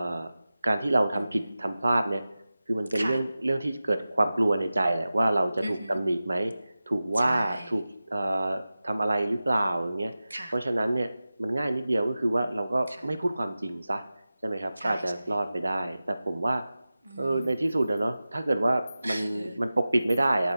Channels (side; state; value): both; inverted; correlation -0.95